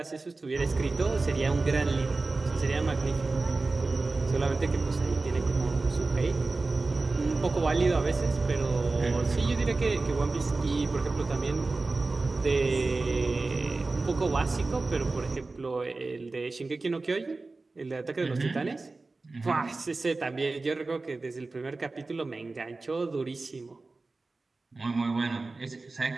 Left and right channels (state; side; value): quieter; left; 3.5 dB